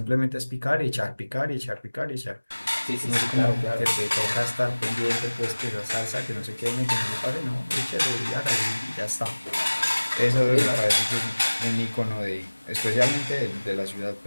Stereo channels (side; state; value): both; inverted; correlation -1.00